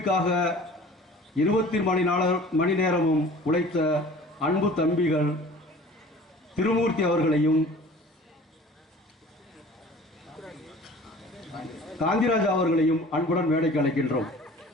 24 மணி நேரமும் உழைத்த அன்பு தம்பிகள் திருமூர்த்தி அவர்களையும் காந்திராஜா அவர்களையும் அன்புடன் மேடைக்கு அழைக்கின்றோம்.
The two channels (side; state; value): both; normal; correlation 0.46